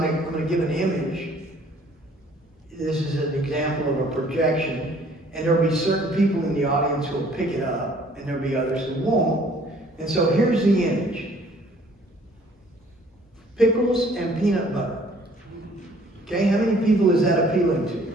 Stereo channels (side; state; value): both; normal; correlation 0.57